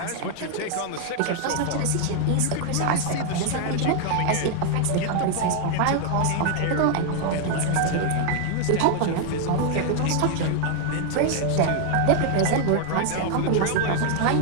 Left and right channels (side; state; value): both; different; correlation 0.00